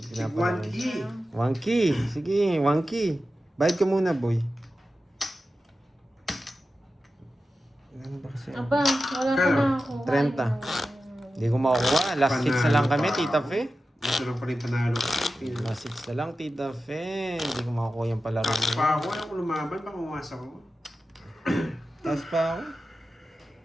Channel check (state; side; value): normal; both; correlation 0.93